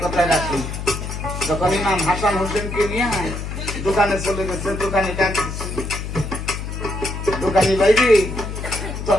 কথায় রাখি। যখন ইমাম হাসান হোসেনকে নিয়ে দোকানে চলে গেছে, দোকানে ডাক দিচ্ছে, দোকানি ভাই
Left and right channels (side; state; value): left; noise; hum, 6 dB below the sound